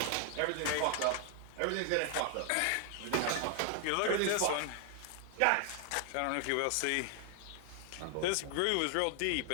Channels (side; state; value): both; different; correlation 0.00